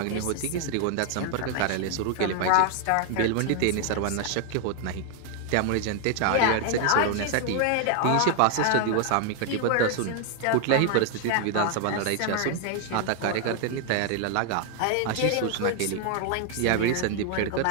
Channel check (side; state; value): both; different; correlation 0.00